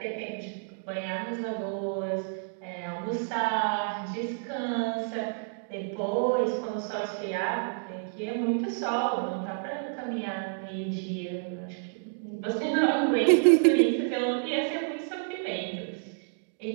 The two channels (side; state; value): left; silent; digital silence